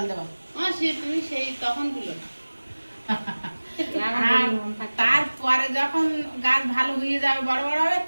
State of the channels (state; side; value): inverted; both; correlation -1.00